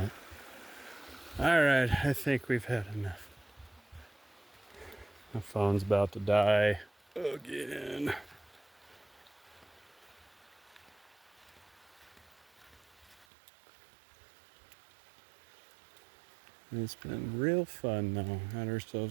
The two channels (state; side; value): drops out; left; at 13.2 s